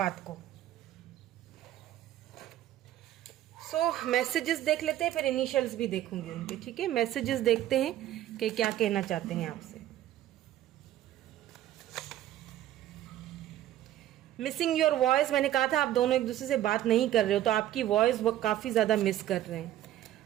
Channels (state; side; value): quieter; left; 13.0 dB